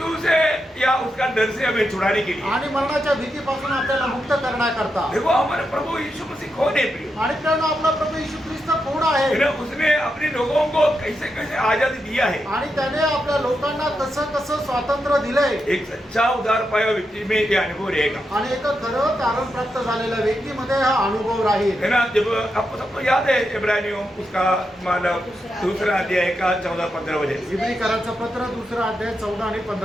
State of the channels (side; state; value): both; normal; correlation 0.85